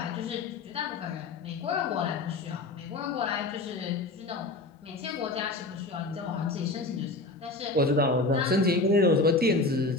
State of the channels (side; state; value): right; quieter; 3.2 dB